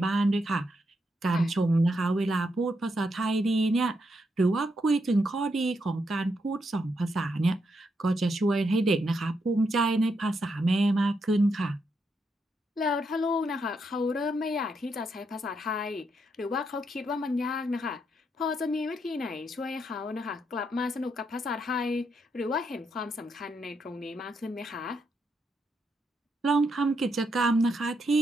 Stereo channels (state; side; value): normal; both; correlation 0.80